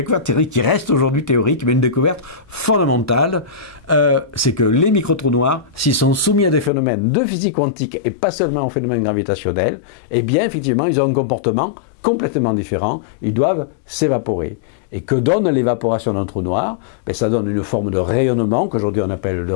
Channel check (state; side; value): drops out; right; at 6.7 s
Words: théorique qui reste aujourd'hui théorique, mais une découverte fondamentale, c'est que les micro-trous noirs, s'ils sont soumis à des phénomènes de physique quantique et pas seulement aux phénomènes gravitationnels, eh bien effectivement ils ont un comportement complètement différent, ils doivent s'évaporer. Et que donne l'évaporation d'un trou noir? Ben, ça donne une forme de rayonnement, qu'aujourd'hui on appelle le